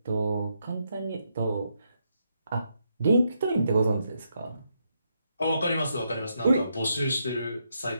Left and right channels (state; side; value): inverted; both; correlation -0.80